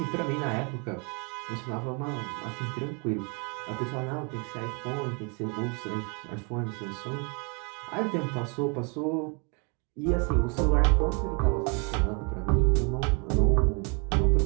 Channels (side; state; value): left; quieter; 34.7 dB